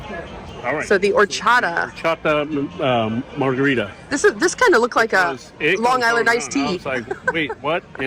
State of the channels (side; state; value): both; identical; correlation 1.00